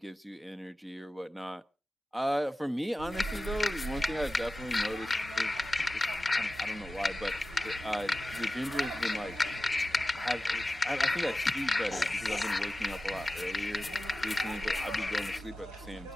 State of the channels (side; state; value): both; normal; correlation 0.95